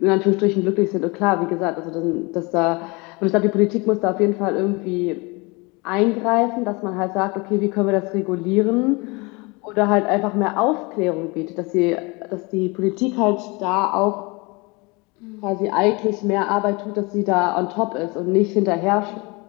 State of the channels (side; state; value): right; quieter; 27.1 dB